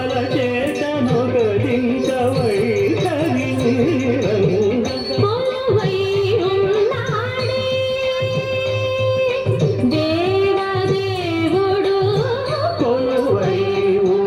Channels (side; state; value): both; identical; correlation 1.00